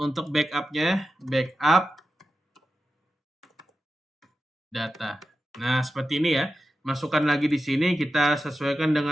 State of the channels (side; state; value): both; normal; correlation 0.92